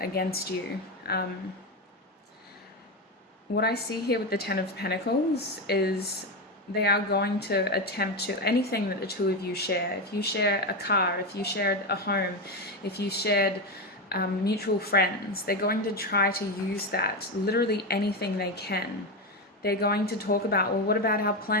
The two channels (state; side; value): normal; both; correlation 0.14